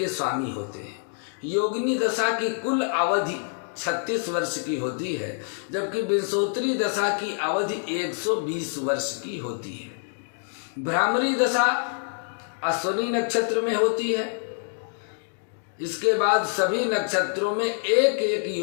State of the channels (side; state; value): right; silent; 61 dB below the other